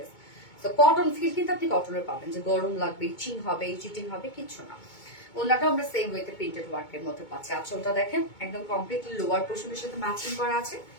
তো কটন ফিল কিন্তু আপনি কটনের পাবেন, যে গরম লাগবে, ইচিং হবে, চিটিং হবে, কিচ্ছু না। ওনাটাও আমরা সেম ওয়েতে প্রিন্টেড ওয়ার্কের মধ্যে পাচ্ছি। আঁচলটা দেখেন একদম কমপ্লিটলি লোয়ার পোর্শনের সাথে ম্যাচিং করা আছে।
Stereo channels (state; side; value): late; right; 2.2 ms